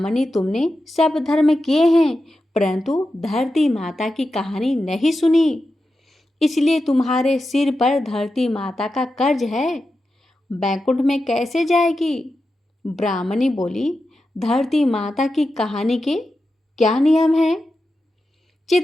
तुमने सब धर्म किए हैं परंतु धरती माता की कहानी नहीं सुनी, इसलिए तुम्हारे सिर पर धरती माता का कर्ज है। बैकुंठ में कैसे जाएगी? ब्राह्मणी बोली, धरती माता की कहानी के क्या नियम हैं?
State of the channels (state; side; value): normal; both; correlation 0.90